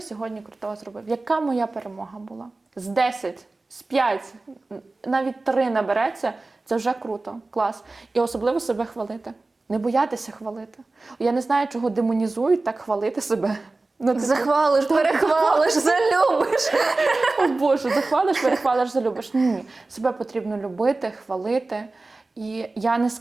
сьогодні крутого зробив? Яка моя перемога була? З 10, з 5, навіть 3 набереться, це вже круто, клас. І особливо себе хвалити. Не боятися хвалити. Я не знаю, чого демонізують так хвалити себе. Захвалиш, перехвалиш, залюбиш. О Боже, захвалиш, перехвалиш, залюбиш. Ні, себе потрібно любити, хвалити. І я не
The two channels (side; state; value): left; quieter; 3.3 dB